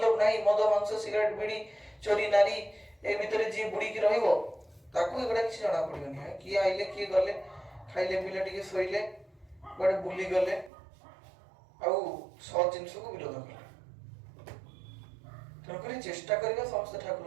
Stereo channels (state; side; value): drops out; left; at 10.7 s